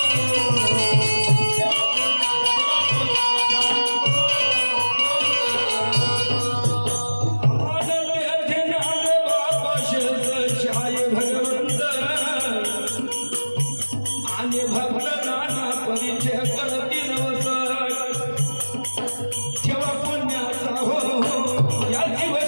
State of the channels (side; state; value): both; inverted; correlation -1.00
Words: आणि भक्त नाना परिचय करती नवस. ठेवा पुण्याचा या